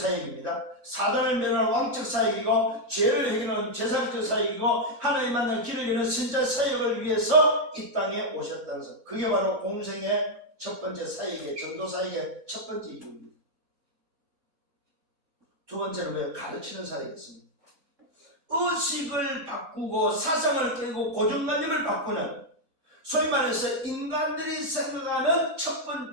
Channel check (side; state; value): both; normal; correlation -0.01